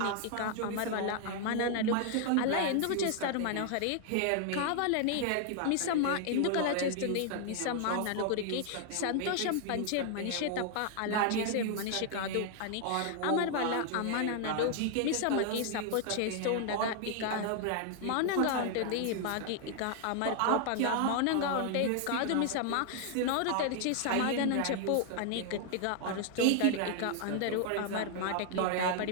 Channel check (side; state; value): both; different; correlation 0.00